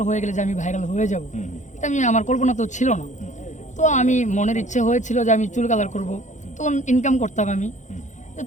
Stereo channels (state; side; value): late; right; 0.35 ms